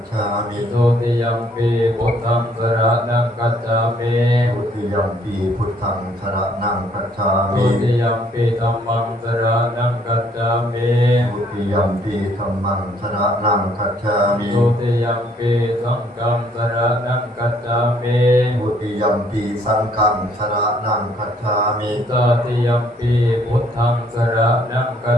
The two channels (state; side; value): normal; both; correlation 0.64